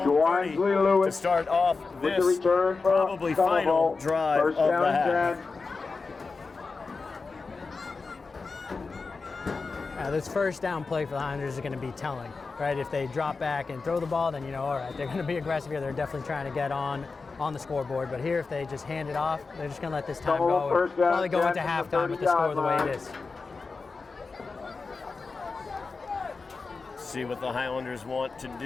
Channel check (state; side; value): quieter; right; 4.3 dB